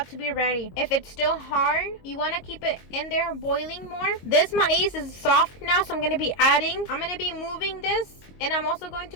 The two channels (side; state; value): right; late; 22 ms